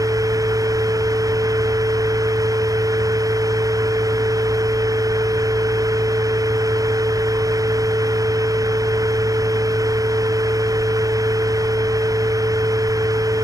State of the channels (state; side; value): late; left; 0.17 ms